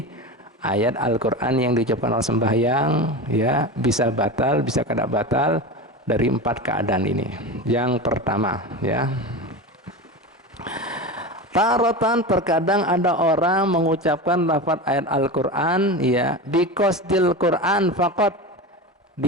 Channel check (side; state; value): both; normal; correlation 0.25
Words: ayat Al-Quran yang diucapkan oleh sembahyang, ya bisa batal, bisa tidak batal dari 4 keadaan ini. Yang pertama, ya. Tarotan terkadang ada orang mengucapkan lafaz ayat Al-Quran, ya, biqasdil Quran faqat.